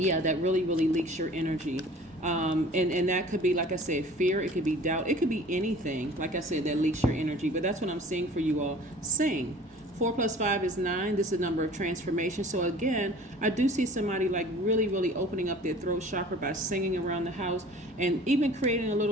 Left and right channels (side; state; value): both; normal; correlation 0.46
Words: that really, really leaks your energy. And that could be, like I said, fear. It could be doubt. It could be anything, like I said, that leaks your energy. But that's what I'm seeing for you all. Sing. 4 + 5 is 9. This is a number of transformation. So again, I do see somebody like really, really opening up their throat chakra by singing around the house, and even creating a